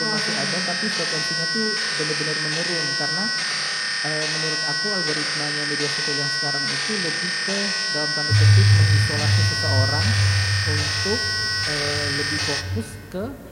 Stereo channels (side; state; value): both; identical; correlation 1.00